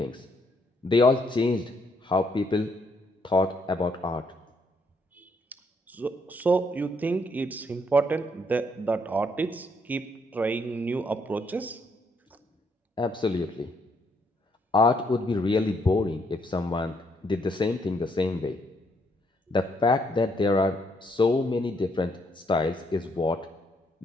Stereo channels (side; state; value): both; normal; correlation 0.72